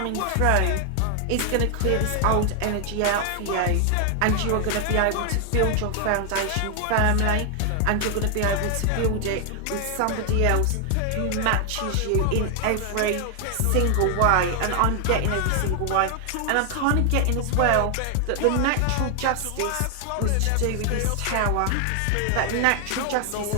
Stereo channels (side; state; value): both; different; correlation 0.00